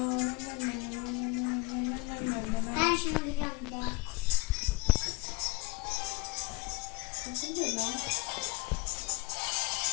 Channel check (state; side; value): quieter; right; 23.4 dB